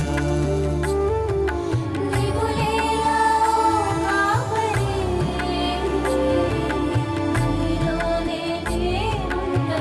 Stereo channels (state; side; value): identical; both; correlation 1.00